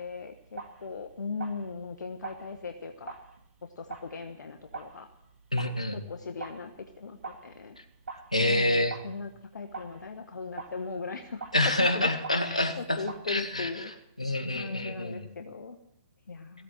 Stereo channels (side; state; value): both; inverted; correlation -0.60